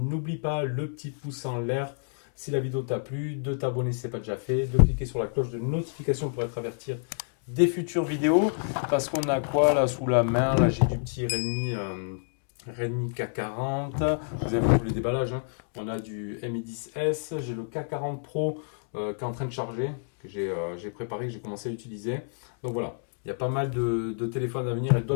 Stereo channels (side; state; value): right; silent; digital silence